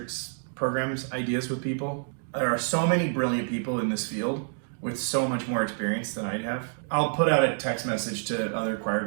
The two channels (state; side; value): silent; left; 59 dB below the other